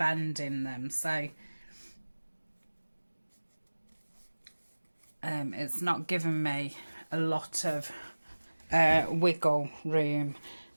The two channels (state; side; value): inverted; both; correlation -1.00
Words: in them, so it's not giving me a lot of wiggle room.